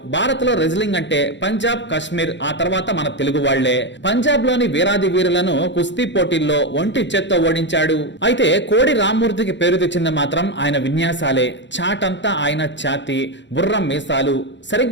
భారత్ లో రెజ్లింగ్ అంటే పంజాబ్, కాశ్మీర్, ఆ తర్వాత మన తెలుగు వాళ్లే. పంజాబ్ లోని వీరాది వీరులను కుస్తీ పోటీల్లో ఒంటి చేత్తో ఓడించాడు. అయితే కోడి రామ్మూర్తికి పేరు తెచ్చింది మాత్రం ఆయన విన్యాసాలే. చాటంతా ఆయన ఛాతి, బుర్రం మీసాలు.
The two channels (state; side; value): late; right; 0.52 ms